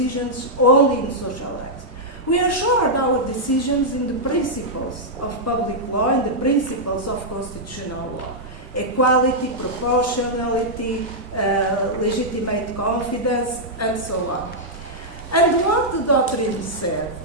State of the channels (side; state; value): both; normal; correlation -0.07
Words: only in social rights. We assured our decisions in the principles of public law and the principles of constitutional law: equality, proportionality, legitimate confidence, and so on. And what the doctrine said,